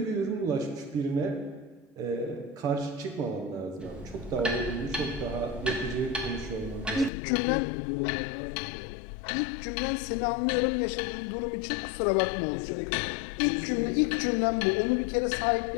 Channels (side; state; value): right; drops out; at 7.1 s